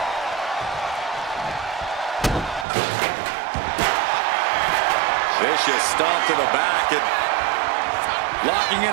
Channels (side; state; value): left; drops out; at 2.7 s